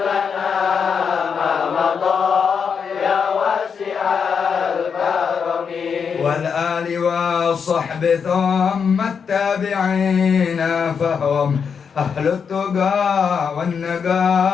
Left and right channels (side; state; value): right; quieter; 6.4 dB